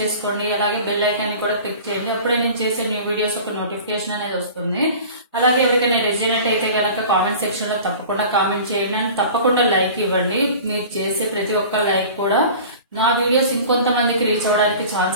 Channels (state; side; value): inverted; both; correlation -0.40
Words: అలాగే బెల్ ఐకాన్ కూడా క్లిక్ చేయండి. అప్పుడే నేను చేసే న్యూ వీడియోస్ ఒక నోటిఫికేషన్ అనేది వస్తుంది. అలాగే ఎవరికైనా రెజినేట్ అయితే కనుక కామెంట్ సెక్షన్ లో తప్పకుండా కామెంట్ చేయండి అండ్ తప్పకుండా లైక్ ఇవ్వండి. మీరు చేసే ప్రతి ఒక్క లైక్ కూడా నా వీడియోస్ ఇంకొంతమందికి రీచ్ అవ్వడానికి